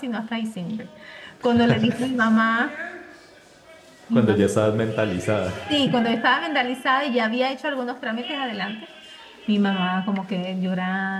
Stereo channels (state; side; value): identical; both; correlation 1.00